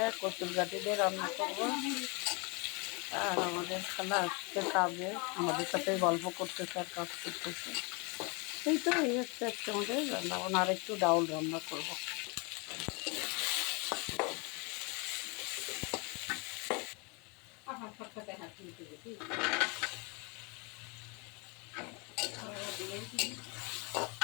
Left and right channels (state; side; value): quieter; right; 31.1 dB